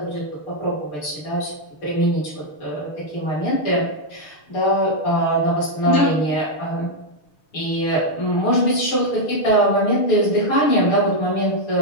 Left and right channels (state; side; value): late; right; 6.7 ms